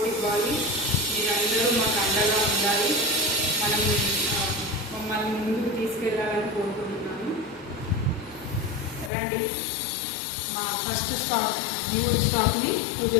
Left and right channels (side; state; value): right; drops out; at 9.1 s